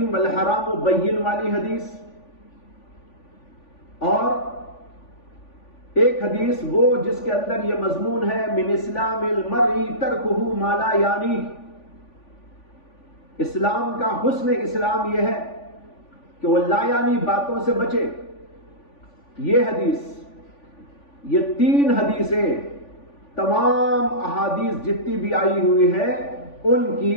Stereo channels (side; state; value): right; late; 3.5 ms